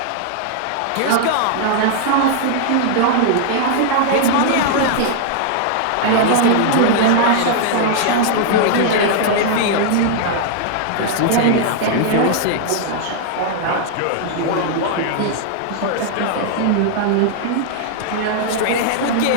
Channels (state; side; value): different; both; correlation -0.01